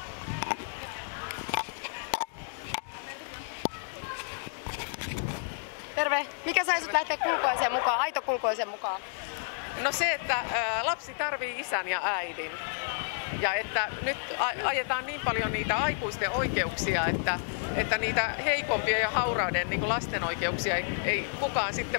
Terve. Mikä sai sut lähteä kulkueeseen mukaan, aitokulkueeseen mukaan? No se, että lapsi tarvii isän ja äidin. Ja että nyt ajetaan niin paljon niitä aikuisten oikeuksia, että niitä heikompia ja hauraiden niin kuin lasten oikeuksia ei kukaan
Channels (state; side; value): silent; right; digital silence